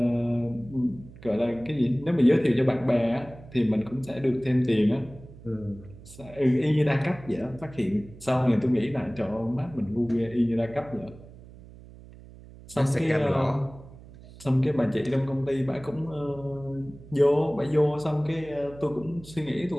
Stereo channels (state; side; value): noise; right; hum, 19 dB below the sound